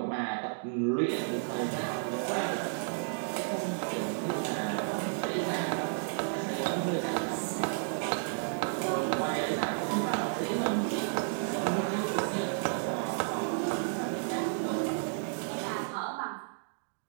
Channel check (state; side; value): silent; left; digital silence